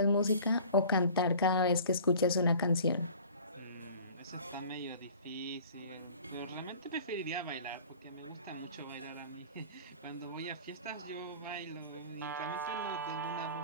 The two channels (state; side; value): inverted; both; correlation -0.45